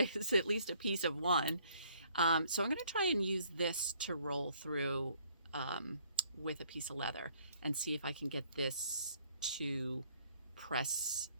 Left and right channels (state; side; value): inverted; both; correlation -0.62